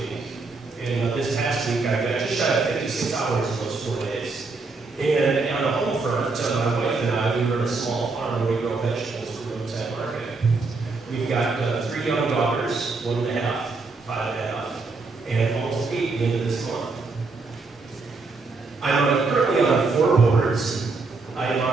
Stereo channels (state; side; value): quieter; left; 3.9 dB